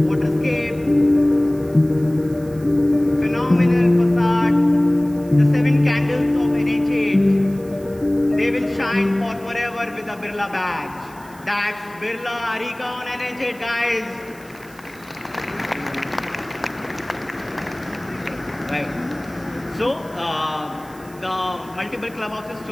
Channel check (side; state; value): right; noise; hiss, 24 dB below the sound